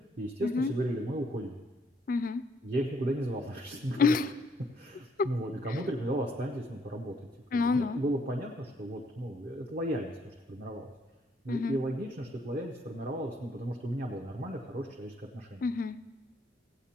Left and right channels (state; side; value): normal; both; correlation 0.68